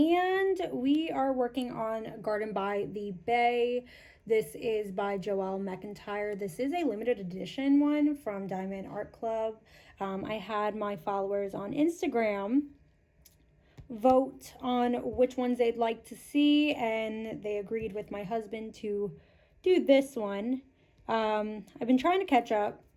we are working on Garden by the Bay. This is by Joelle McIntyre. This is a limited edition one from Diamond Art Club. I had my followers on Instagram vote on which ones they'd like to see, and they agreed with my husband to do this one. I've been trying to catch up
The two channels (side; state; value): both; identical; correlation 1.00